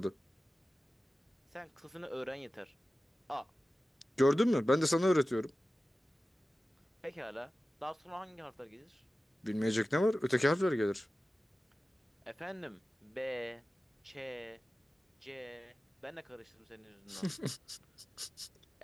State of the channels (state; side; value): normal; both; correlation 0.95